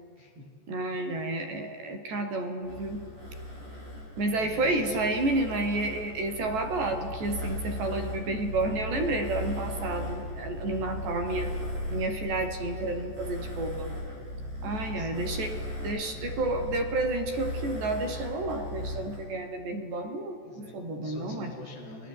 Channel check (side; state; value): left; late; 14 ms